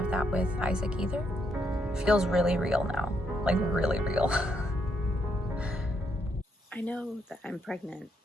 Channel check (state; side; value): normal; both; correlation 0.76